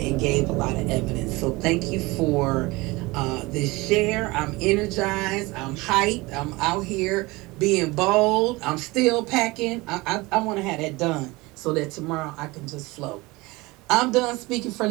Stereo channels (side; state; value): left; quieter; 22.5 dB